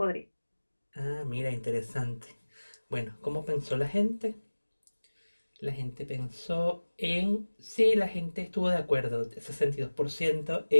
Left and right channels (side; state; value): both; inverted; correlation -1.00